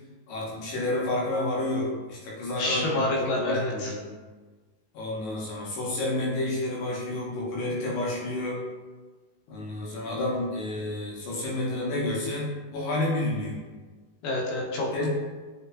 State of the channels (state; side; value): late; right; 19 ms